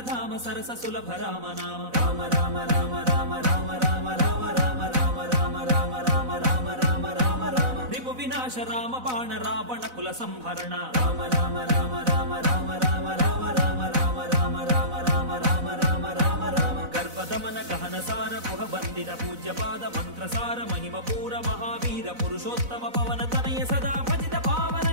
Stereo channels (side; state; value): left; late; 4.0 ms